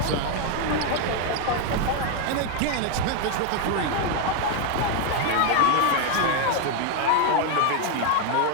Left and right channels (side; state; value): both; different; correlation 0.01